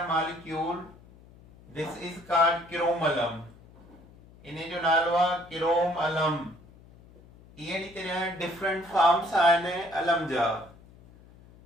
molecule, this is called chrome alum. इन्हें जो नालो आहे क्रोम अलम. इहे तरह डिफरेंट फॉर्म्स आहिनि अलम जा,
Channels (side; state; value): left; noise; hum, 24 dB below the sound